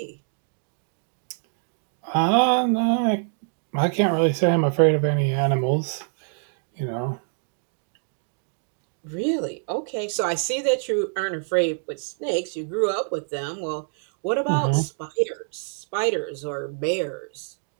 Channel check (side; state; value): left; silent; digital silence